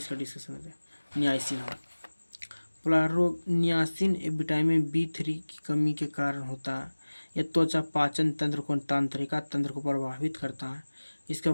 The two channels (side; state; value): both; inverted; correlation -1.00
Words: डिस्कशन होता है नियासिन। हाँ, पोलग्राहा रोग नियासिन विटामिन B3 की कमी के कारण होता है। यह त्वचा पाचन तंत्र को, तंत्रिका तंत्र को प्रभावित करता है। इसका